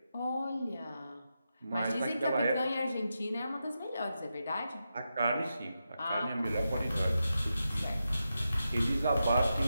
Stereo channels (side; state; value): both; inverted; correlation -0.88